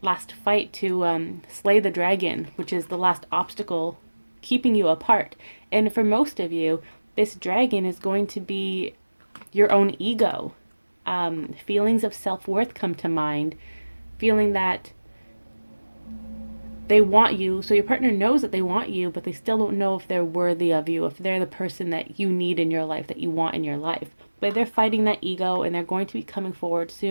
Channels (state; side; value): inverted; both; correlation -1.00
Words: fight to slay the dragon, which is the last obstacle keeping you apart. And for most of you, this dragon is going to be your own ego. Feelings of self-worth come to mind, feeling that they want you, so your partner knows that they want you, but they still don't know if they're worthy of you, if they're the person that you need in your life, that you want in your life. But they're fighting that ego, and they're going to be coming forward